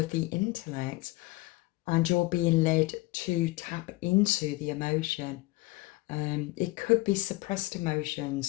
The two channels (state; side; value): quieter; right; 20.9 dB